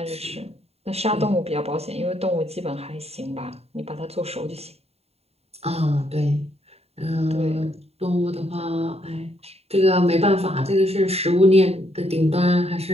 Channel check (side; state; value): left; late; 0.30 ms